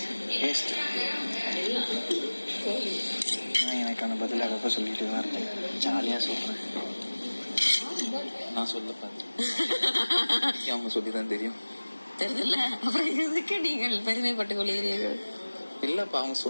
வேஸ்ட். நான் எனக்கான பதில் அப்பப்போ சொல்லிட்டு தான் இருக்கேன். ஜாலியாக சொல்கிறேன். நான் சொல்ல பார்த்தேன், அவங்க சொல்லி தான் தெரியும். தெரியல, அப்புறம் எதுக்கு நீங்கள் பெருமைப்பட்டு கொள்கிறீர்கள்? இல்லப்பா, அவங்க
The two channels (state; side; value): inverted; both; correlation -1.00